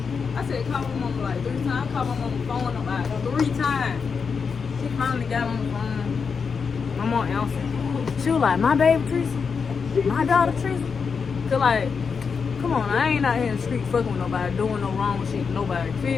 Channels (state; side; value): quieter; right; 5.7 dB